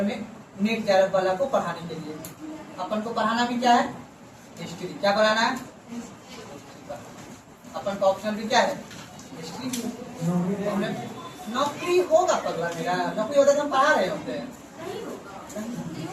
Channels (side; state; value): both; identical; correlation 1.00